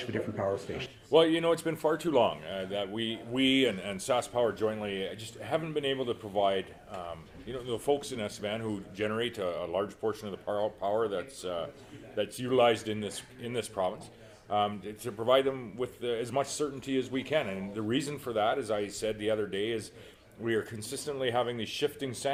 of the different power stations. Well, it's been far too long that we and Sask Power jointly just haven't been able to provide, the folks in Estevan who generate a large portion of the power that's utilized in this province, to provide them with as much certainty as we can. And the reason for that, as I said the other day, is we are consistently having these shifting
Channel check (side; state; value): both; identical; correlation 1.00